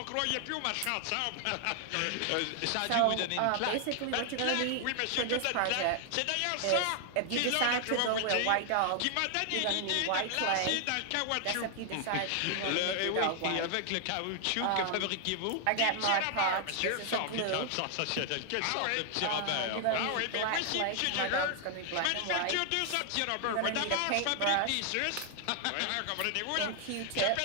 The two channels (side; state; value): both; different; correlation 0.00